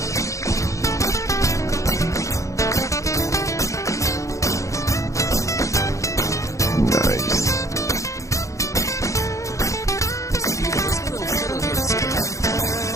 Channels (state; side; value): late; right; 0.15 ms